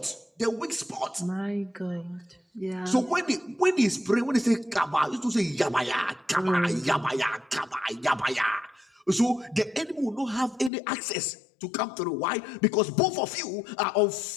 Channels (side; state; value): right; drops out; at 10.7 s